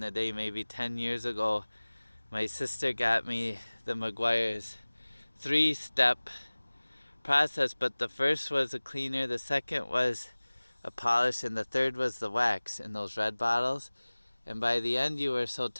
day, maybe 10 years ago, my sister got me the Meguiar's 3-step process, but the first was a cleaner, the second was a polish, and the third was the wax in those red bottles. And by the end, you were so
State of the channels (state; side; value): inverted; both; correlation -1.00